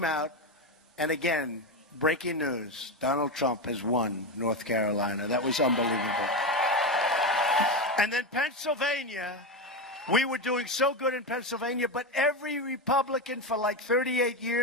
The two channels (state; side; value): normal; both; correlation 0.14